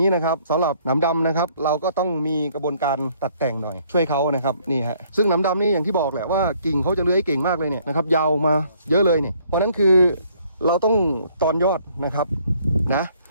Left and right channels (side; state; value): both; inverted; correlation -0.63